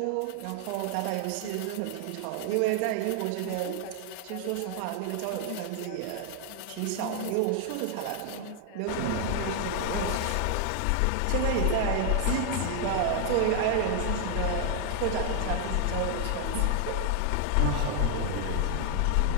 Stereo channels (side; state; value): both; different; correlation 0.00